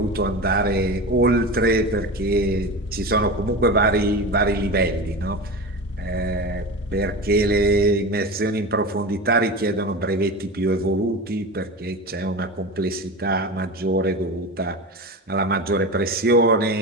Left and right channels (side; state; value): both; normal; correlation 0.26